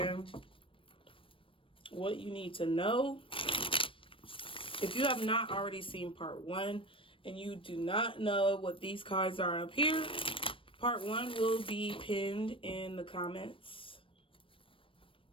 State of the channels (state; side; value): late; right; 0.25 ms